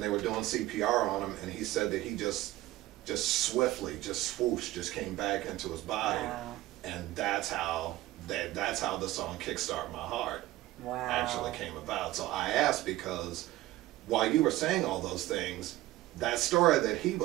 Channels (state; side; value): quieter; left; 16.6 dB